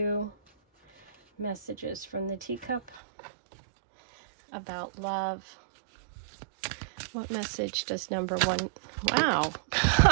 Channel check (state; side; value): drops out; left; at 3.0 s